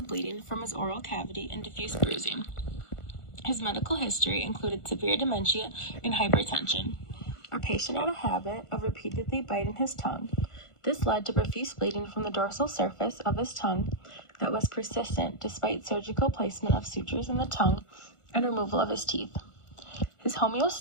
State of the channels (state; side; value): late; right; 1.4 ms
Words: bleeding from his oral cavity and diffuse bruising. His medical history included severe dementia and hypertension. Our patient had a habit of repeatedly biting his tongue. This led to profuse bleeding from the dorsal surface of his tongue that was persistent despite surgical placement of sutures in the tongue and removal of his teeth. His